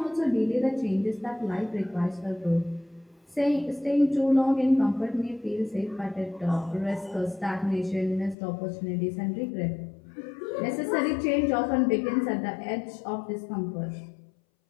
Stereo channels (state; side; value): drops out; right; at 8.3 s